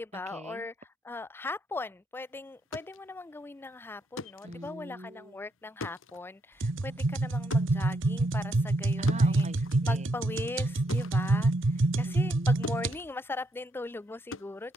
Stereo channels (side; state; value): both; normal; correlation 0.77